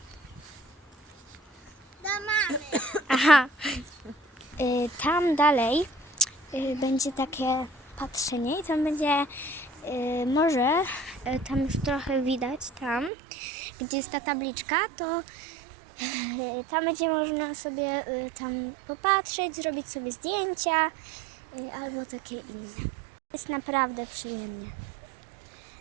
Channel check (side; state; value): left; drops out; at 13.1 s